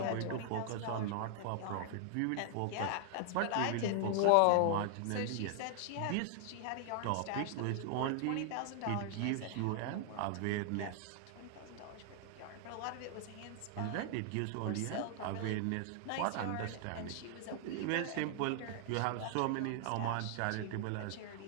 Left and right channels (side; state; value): both; different; correlation 0.00